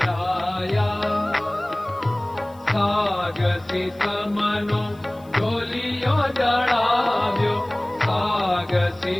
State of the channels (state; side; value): noise; left; hiss, 29 dB below the sound